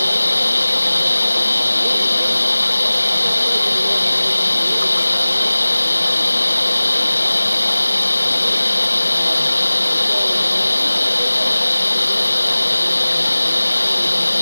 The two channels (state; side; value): inverted; both; correlation -0.99